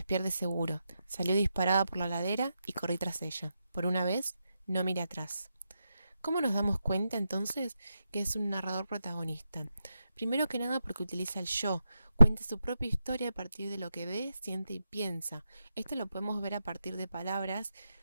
pierde seguro. Salió disparada por la ladera y corrí tras ella. Por una vez, no miré atrás. ¿Cómo nos damos cuenta entonces que es un narrador protagonista? Primero que nada porque utiliza el yo, cuenta su propia historia a partir de lo que ve, siente y piensa. Esto lo podemos ver a partir de palabras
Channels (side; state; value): both; inverted; correlation -0.86